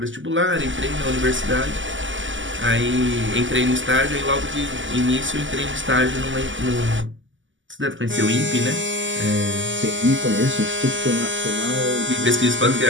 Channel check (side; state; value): left; late; 0.55 ms